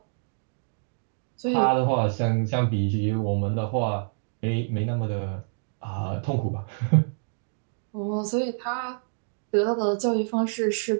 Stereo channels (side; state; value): left; silent; digital silence